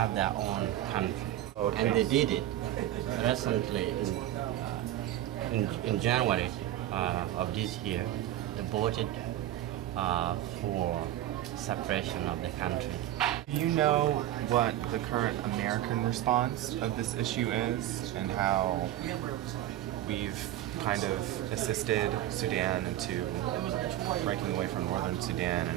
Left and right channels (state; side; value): quieter; left; 13.1 dB